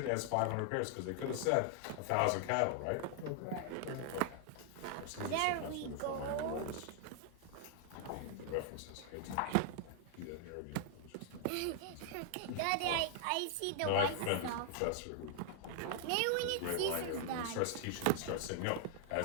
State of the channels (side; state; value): both; different; correlation 0.00